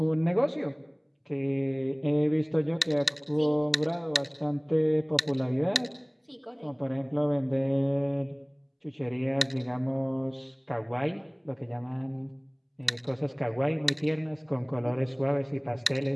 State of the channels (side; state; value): both; identical; correlation 1.00